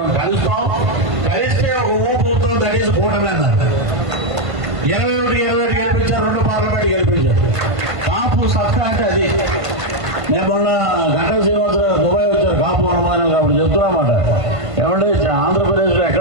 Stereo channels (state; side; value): late; left; 1.5 ms